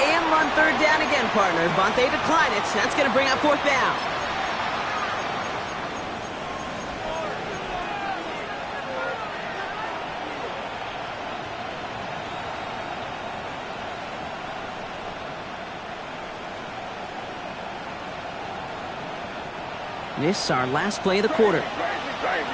run third down again, partner, but they decline it. That's going to bring up fourth down. This is our last play of the quarter.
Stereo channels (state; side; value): identical; both; correlation 1.00